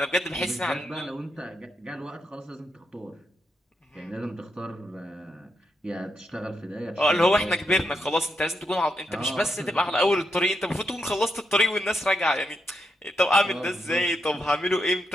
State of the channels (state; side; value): normal; both; correlation 0.82